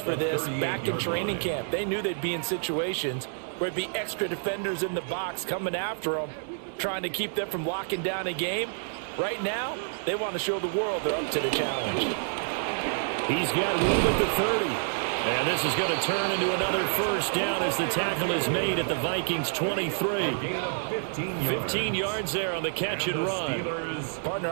for this back in training camp. They knew they'd be in situations where it'd be extra defenders in the box coming after them, trying to keep them from locking down a game. Right now, they want to show the world they're up to the challenge. He's got room at the 30. And this is going to turn into another first down as the tackle is made at the Vikings 23. 15 yards there on the catch and run. Partner,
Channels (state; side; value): silent; left; digital silence